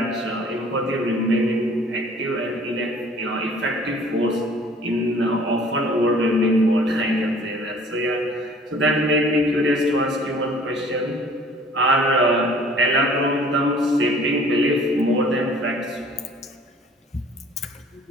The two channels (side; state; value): both; normal; correlation 0.52